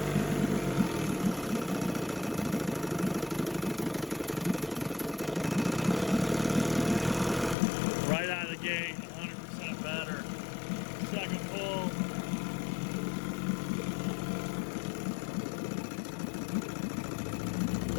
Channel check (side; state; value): right; drops out; at 7.6 s